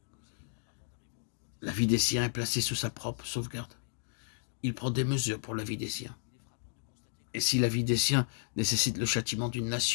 La vie des siens est placée sous sa propre sauvegarde. Il prend des mesures pour la vie des siens. Et si la vie des siens nécessite le châtiment d'une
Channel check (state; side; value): silent; right; digital silence